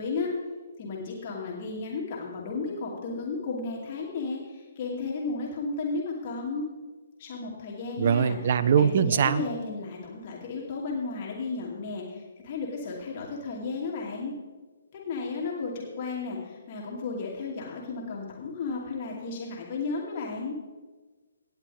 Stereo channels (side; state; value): both; inverted; correlation -0.52